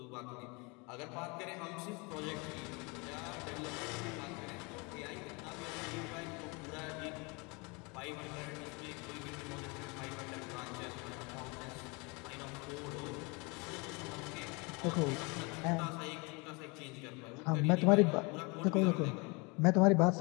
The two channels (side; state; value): right; quieter; 29.1 dB